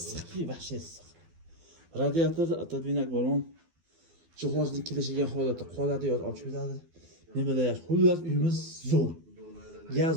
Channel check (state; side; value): late; left; 12 ms